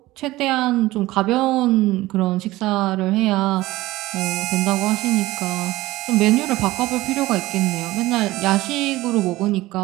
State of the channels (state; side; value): quieter; left; 18.0 dB